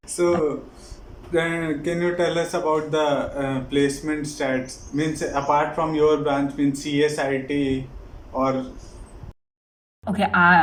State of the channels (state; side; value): identical; both; correlation 1.00